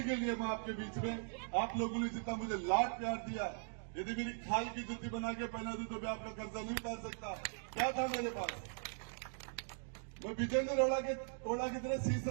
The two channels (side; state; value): left; silent; digital silence